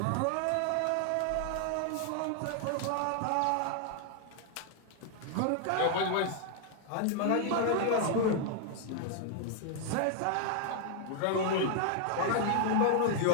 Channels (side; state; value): both; different; correlation 0.00